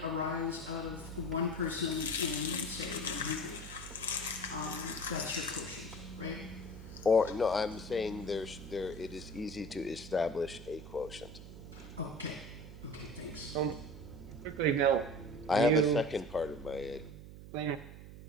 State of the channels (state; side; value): noise; right; hum, 14 dB below the sound